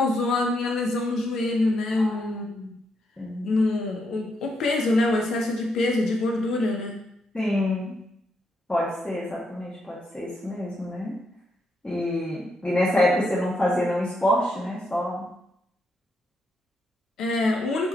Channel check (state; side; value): normal; both; correlation 0.79